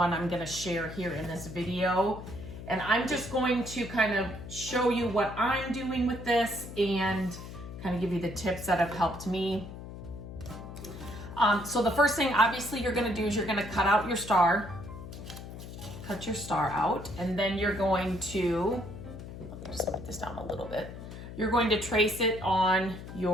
I'm gonna share here in this video. And I'm just going to kind of show you what I'm doing with this and kind of give you the tips that have helped me. So the first thing obviously you're gonna do is you're gonna cut out your star. Cut your star out, and then you're going to, let me just put this down a little bit. You're going to trace it on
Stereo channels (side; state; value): left; noise; hum, 11 dB below the sound